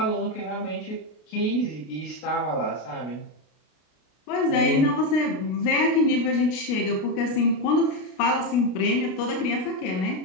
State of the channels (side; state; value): right; late; 33 ms